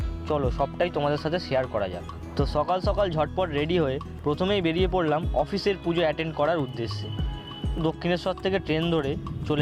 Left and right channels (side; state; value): both; identical; correlation 1.00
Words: চলো সবটাই তোমাদের সাথে শেয়ার করা যাক। তো সকাল সকাল ঝটপট রেডি হয়ে প্রথমেই বেরিয়ে পড়লাম অফিসের পুজো অ্যাটেন্ড করার উদ্দেশ্যে। দক্ষিণেশ্বর থেকে ট্রেন ধরে